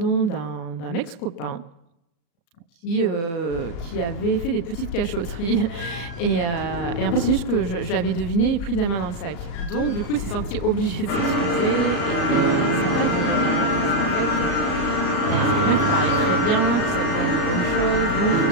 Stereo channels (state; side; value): late; right; 36 ms